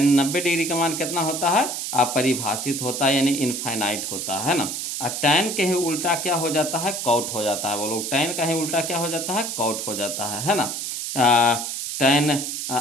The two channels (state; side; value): noise; right; hiss, 4 dB below the sound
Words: 90 डिग्री का मान कितना होता है? अपरिभाषित होता है, यानी इनफाइनाइट होता है ना। और टेन के ही उल्टा क्या हो जाता है? कॉट हो जाता है बोलो। टेन का ही उल्टा क्या हो जाता है? कॉट हो जाता है ना। टेन